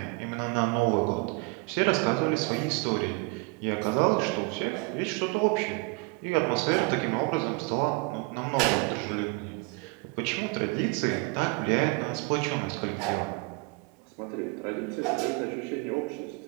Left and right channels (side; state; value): left; quieter; 28.0 dB